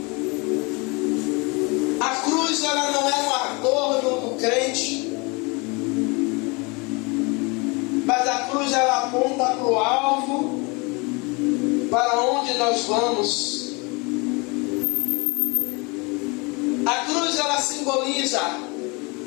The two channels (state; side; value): quieter; right; 28.6 dB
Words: A cruz ela não é um adorno do crente, mas a cruz ela aponta para o alvo, para onde nós vamos. A cruz ela simboliza